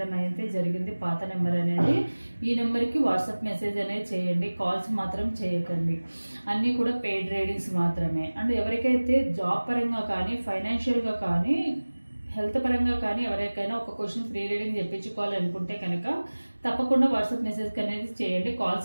అయితే జరిగింది, పాత నెంబర్ అనేది. ఈ నెంబర్కి వాట్సాప్ మెసేజ్ అనేది చేయండి, కాల్స్ మాత్రం చేయకండి. అన్నీ కూడా పెయిడ్ రీడింగ్స్ మాత్రమే. అండ్ ఎవరికైతే జాబ్ పరంగా కానీ ఫైనాన్షియల్గా కానీ హెల్త్ పరంగా కానీ ఎవరికైనా ఒక క్వశ్చన్ ఫ్రీ రీడింగ్ చెప్పించుకోవాలనుకుంటే కనుక తప్పకుండా వాట్సాప్ మెసేజ్ అనేది చేయండి.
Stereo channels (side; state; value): both; inverted; correlation -1.00